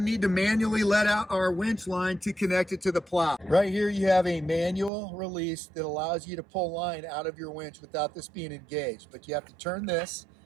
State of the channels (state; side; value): drops out; left; at 4.9 s